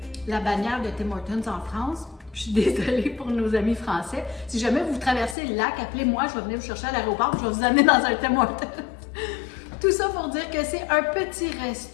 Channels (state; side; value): drops out; right; at 5.4 s